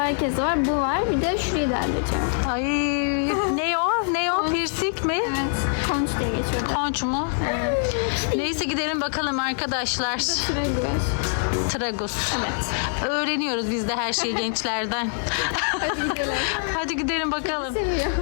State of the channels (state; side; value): silent; right; digital silence